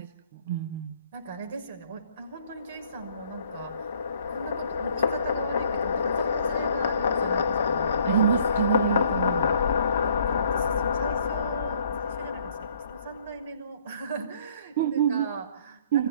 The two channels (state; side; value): inverted; both; correlation -0.61